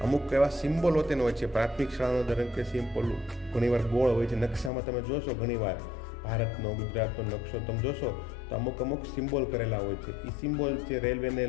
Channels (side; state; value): right; drops out; at 4.7 s